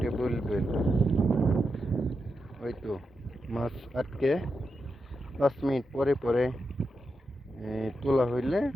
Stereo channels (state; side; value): normal; both; correlation 0.87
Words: বলবেন। ওই তো মাছ আটকে 5 মিনিট পরে পরে তোলা হইলে,